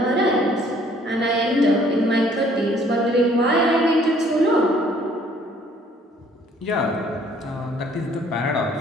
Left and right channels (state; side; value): normal; both; correlation 0.60